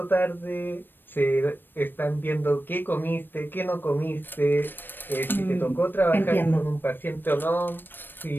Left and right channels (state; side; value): late; right; 0.095 ms